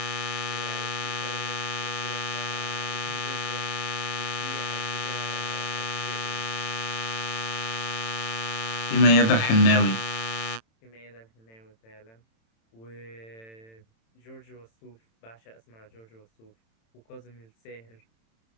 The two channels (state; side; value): late; right; 27 ms